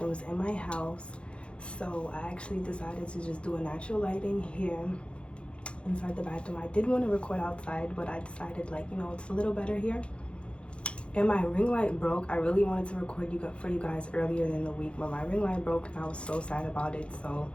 in my house. So I actually decided to just do a natural lighting here inside the bathroom. I did want to record outside, but I decided it's a little better here. And my ring light broke. I really wanted to record for you guys earlier in the week, but my ring light broke and I was so sad about it. So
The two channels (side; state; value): right; late; 0.058 ms